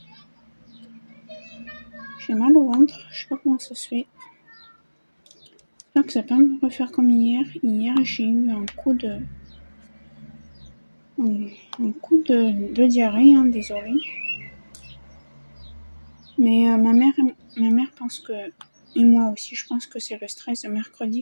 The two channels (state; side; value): inverted; both; correlation -1.00